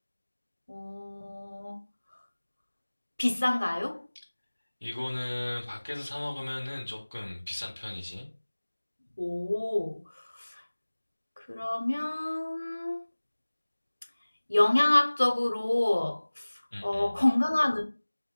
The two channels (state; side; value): inverted; both; correlation -1.00